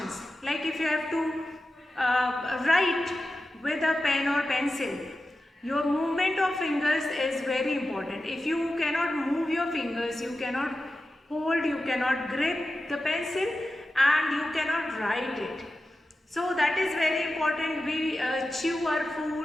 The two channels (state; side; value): normal; both; correlation 0.92